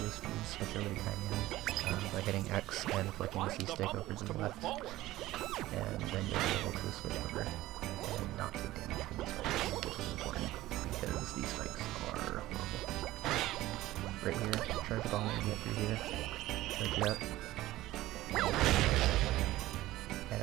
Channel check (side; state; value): left; quieter; 16.4 dB